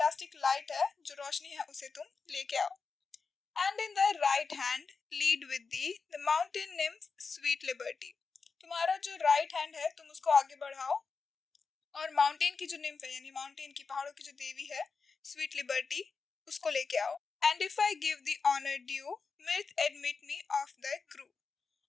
लाइट है, जो रोशनी है, उसे तुम लेके आओ. And in thy right hand lead with thee the mountain nymph sweet liberty. तुम्हारा जो राइट हैंड है तुम उसको आगे बढ़ाओ और माउंटेन की जो निम्फ है, यानी माउंटेन की, पहाड़ों की जो देवी है, स्वीट लिबर्टी, उसको लेके आओ. And if I give the honor due, mirth admit me of thy crew.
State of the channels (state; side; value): quieter; right; 4.8 dB